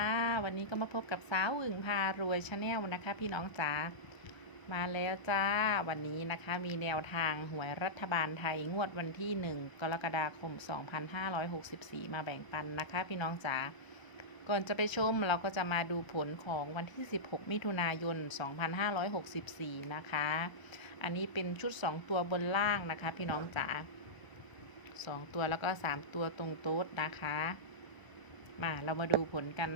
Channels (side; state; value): right; late; 1.0 ms